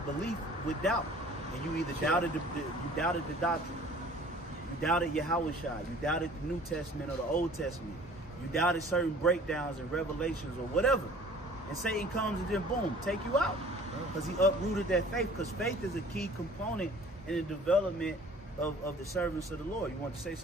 belief with doubt, and you either doubted the doctrine, you doubted Yahushua, you doubted the New Testament or the Old Testament, you doubted certain breakdowns and revelations or whatever, and Satan comes and then boom, take you out, because he uprooted that faith. Because faith is a key component in the development of the servants of the Lord. You want to say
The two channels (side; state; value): both; normal; correlation 0.50